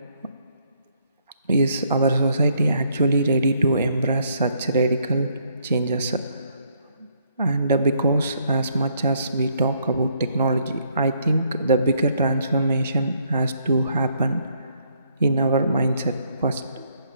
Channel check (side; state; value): both; inverted; correlation -0.69